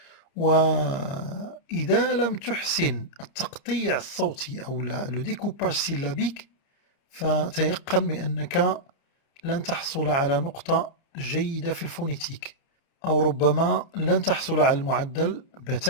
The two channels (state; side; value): late; right; 29 ms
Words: وإذا لم تحسن التقطيع الصوتي أو لو ديكوباج سيلابيك فتيقن بأنك لن تحصل على نقطة جيدة في الفونيتيك أو ربما لن تحصل على المعدل